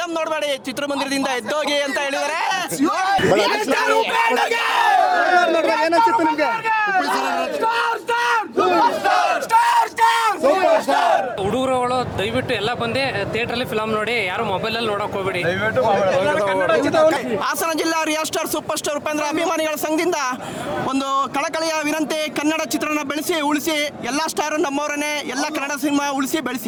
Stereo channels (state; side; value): identical; both; correlation 1.00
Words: ನೋಡಬೇಡಿ, ಚಿತ್ರಮಂದಿರದಿಂದ ಎದ್ದೋಗಿ ಅಂತ ಹೇಳಿದರೆ. ಹುಡುಗರುಗಳು ದಯವಿಟ್ಟು ಎಲ್ಲ ಬಂದು ಥಿಯೇಟ್ರಲ್ಲಿ ಫಿಲಮ್ ನೋಡಿ, ಯಾರು ಮೊಬೈಲಲ್ಲಿ ನೋಡಕ್ ಹೋಗ್ಬೇಡಿ. ಹಾಸನ ಜಿಲ್ಲಾ real star super star Upendra ಅಭಿಮಾನಿಗಳ ಸಂಘದಿಂದ ಒಂದು ಕಳಕಳಿಯ ವಿನಂತಿ, ಕನ್ನಡ ಚಿತ್ರನ ಬೆಳೆಸಿ ಉಳಿಸಿ. ಎಲ್ಲ ಸ್ಟಾರ್ ನಮ್ಮವರನ್ನೇ, ಎಲ್ಲ ಕನ್ನಡ ಸಿನಿಮಾ ಉಳಿಸಿ